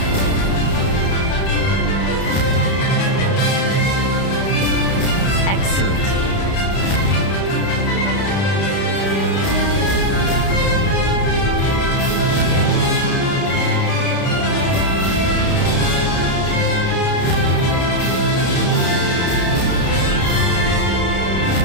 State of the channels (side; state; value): right; late; 31 ms